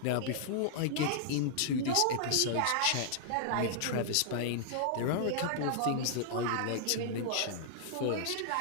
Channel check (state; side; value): different; both; correlation -0.01